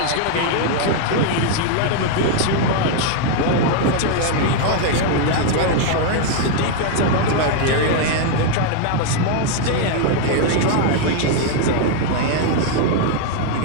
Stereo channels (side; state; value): both; different; correlation 0.00